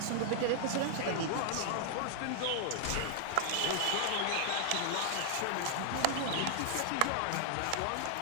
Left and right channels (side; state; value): both; different; correlation 0.00